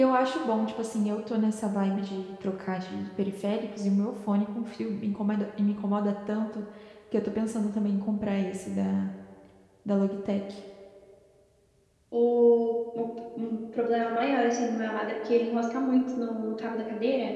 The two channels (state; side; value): identical; both; correlation 1.00